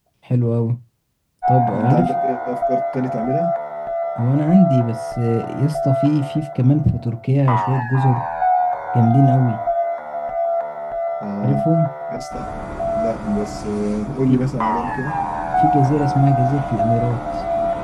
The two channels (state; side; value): identical; both; correlation 1.00